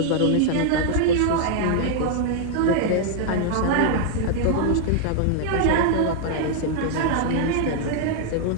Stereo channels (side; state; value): both; different; correlation 0.00